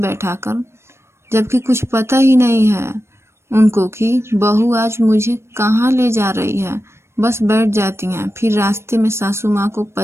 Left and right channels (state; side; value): late; left; 0.13 ms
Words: जबकि कुछ पता ही नहीं है उनको कि बहू आज मुझे कहाँ ले जा रही है, बस बैठ जाती हैं। फिर रास्ते में सासू माँ को